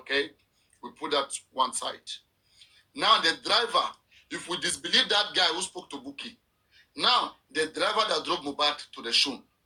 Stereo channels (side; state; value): both; identical; correlation 1.00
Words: We put that one side. Now the driver, if we disbelieve that guy who spoke to Buki, now the driver that drove Mohbad to the show,